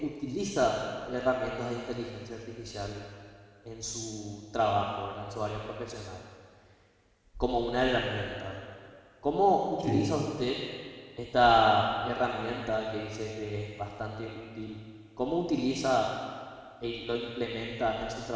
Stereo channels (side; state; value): both; identical; correlation 1.00